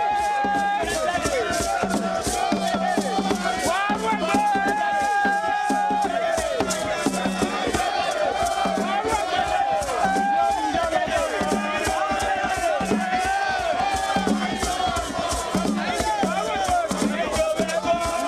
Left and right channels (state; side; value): identical; both; correlation 1.00